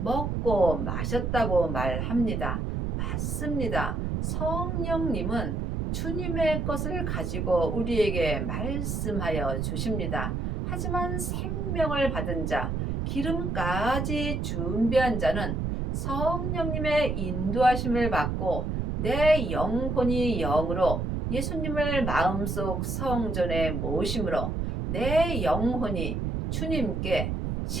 마셨다고 말합니다. 맞습니다. 성령님은 주님의 것을 가지고 우리에게 말씀하여 주십니다. 하지만 생명을 받은 자, 기름까지 준비한 자는 성령님의 인도하심을 받고 내 영혼이 영으로 예수님을 마음속 성전에 모심으로 내 영혼이 주님께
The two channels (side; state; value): right; noise; rumble, 1 dB below the sound